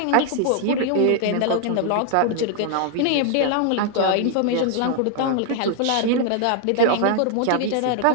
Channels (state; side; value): different; both; correlation 0.00